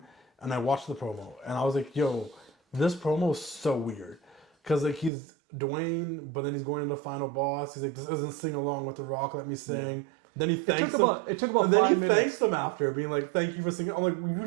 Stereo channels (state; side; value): drops out; left; at 5.1 s